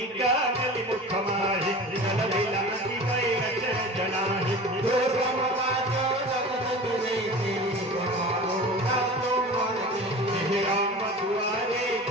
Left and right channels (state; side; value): normal; both; correlation 0.36